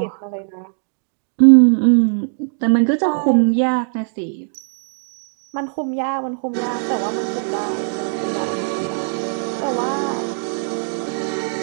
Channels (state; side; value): silent; left; digital silence